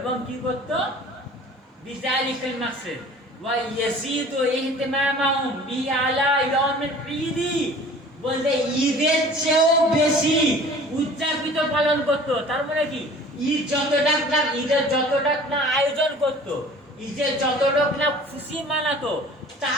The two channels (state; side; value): normal; both; correlation 0.46